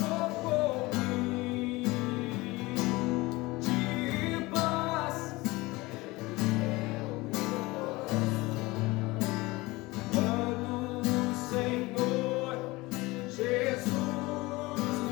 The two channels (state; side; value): quieter; right; 21.7 dB